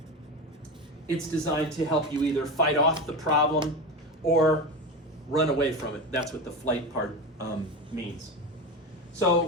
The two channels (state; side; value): normal; both; correlation 0.22